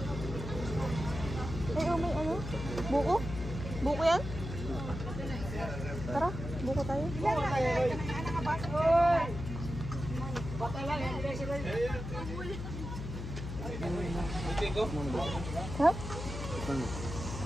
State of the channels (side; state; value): left; noise; hum, 7 dB below the sound